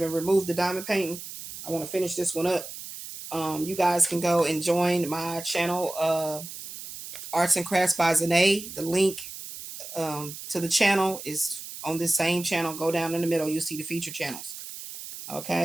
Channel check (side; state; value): right; noise; hiss, 11 dB below the sound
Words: removed the diamond painting. I want to finish this one up. You guys can go and join my channel, Arts and Crafts by Zahnae. The link to the channel is on this same channel. Go down in the middle. You'll see the feature channels.